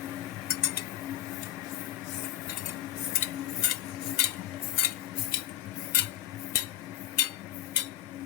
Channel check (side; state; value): right; quieter; 13.3 dB